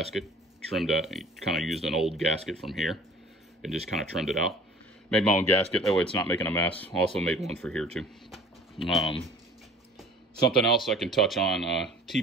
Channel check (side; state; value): both; normal; correlation 0.47